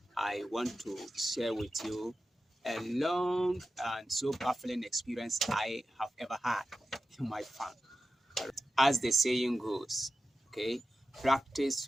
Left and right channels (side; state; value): both; normal; correlation 0.92